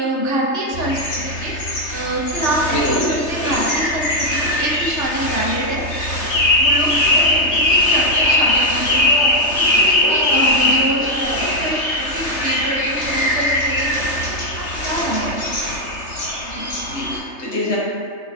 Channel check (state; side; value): late; right; 3.3 ms